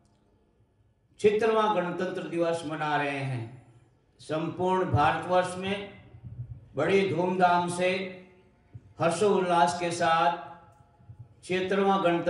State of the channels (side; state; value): both; identical; correlation 1.00